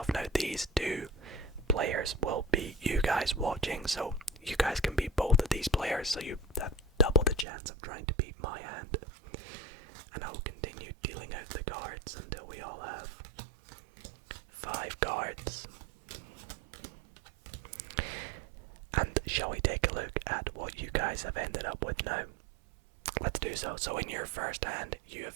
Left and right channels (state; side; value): drops out; left; at 7.5 s